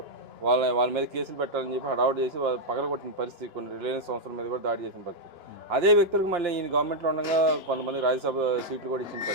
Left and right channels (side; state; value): left; late; 2.9 ms